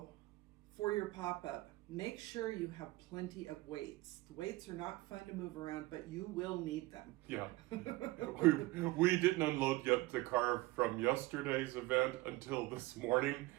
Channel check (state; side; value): quieter; left; 20.1 dB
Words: for your pop-up, make sure you have plenty of weights. The weights are not fun to move around, but you will need them. Yeah. we didn't unload yet the car from yesterday's event until this morning.